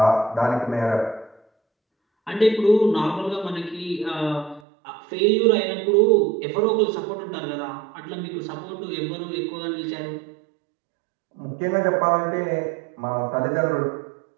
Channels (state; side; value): drops out; left; at 4.6 s